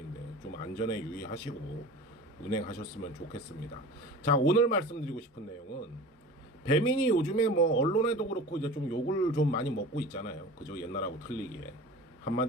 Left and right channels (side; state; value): both; normal; correlation 0.37